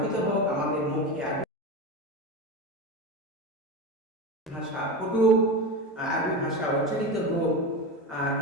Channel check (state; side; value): normal; both; correlation 0.22